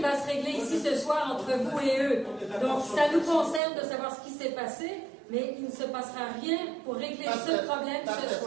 va se régler ici ce soir entre vous et eux. Donc, ça nous concerne de savoir ce qui s'est passé, mais il ne se passera rien pour régler ce problème ce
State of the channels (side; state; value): left; drops out; at 3.6 s